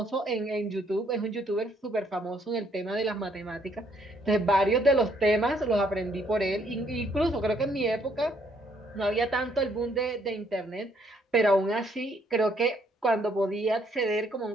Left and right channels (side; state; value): both; normal; correlation 0.68